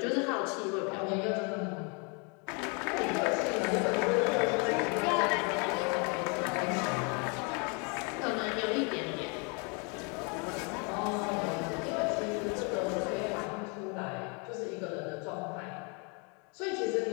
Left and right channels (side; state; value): right; quieter; 34.2 dB